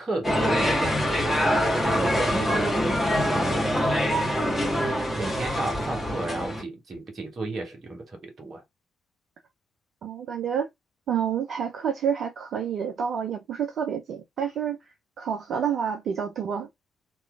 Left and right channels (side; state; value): both; normal; correlation 0.79